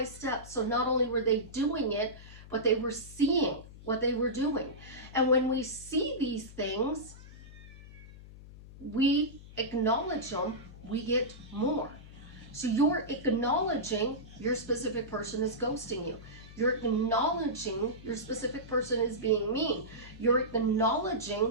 step. So not only were they doing it, but they were seeing what they were doing. And when we see these things, we acknowledge them, we get more. So you're acknowledging your specific person is ghosting you. You're acknowledging your specific person is being mean. You're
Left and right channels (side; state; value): left; noise; hum, 17 dB below the sound